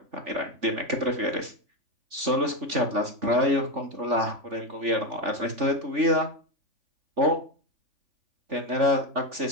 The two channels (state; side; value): late; left; 3.5 ms